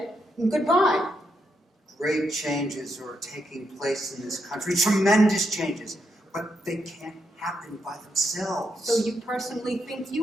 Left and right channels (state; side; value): normal; both; correlation 0.81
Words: goodbye. Great changes are taking place in this country, tremendous changes, but they can't happen by themselves. So you personally think